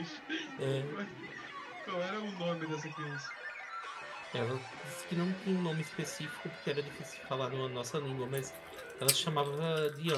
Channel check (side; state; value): both; identical; correlation 1.00